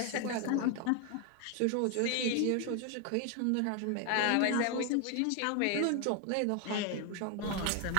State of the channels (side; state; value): both; different; correlation 0.01